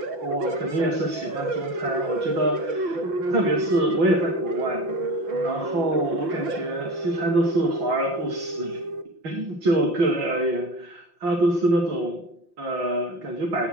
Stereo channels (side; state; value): left; late; 5.8 ms